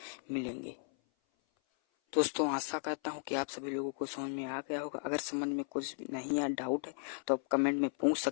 मिलेंगे। दोस्तों आशा करता हूँ कि आप सभी लोगों को समझ में आ गया होगा। अगर समझ में कुछ नहीं या डाउट है तो आप कमेंट में पूछ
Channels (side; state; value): right; silent; 54 dB below the other